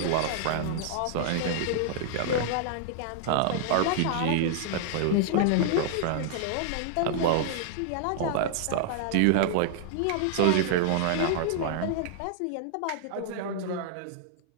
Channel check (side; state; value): both; different; correlation -0.01